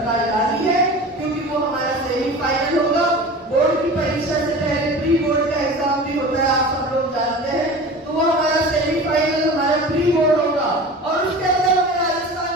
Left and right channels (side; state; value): both; normal; correlation 0.36